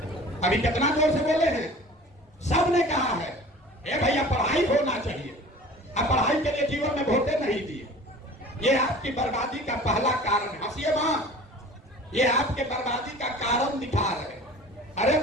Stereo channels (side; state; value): both; normal; correlation 0.43